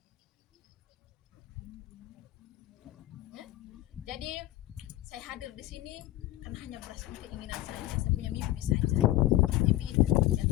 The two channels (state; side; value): quieter; right; 15.5 dB